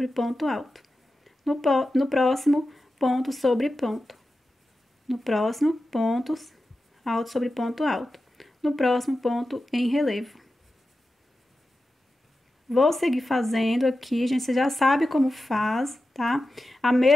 ponto alto. No próximo, ponto sobre ponto. No próximo, pontos alto sobre ponto alto. No próximo, ponto em relevo. Vou seguir fazendo aqui, gente, você já sabe como faz, tá? A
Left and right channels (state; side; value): normal; both; correlation 0.92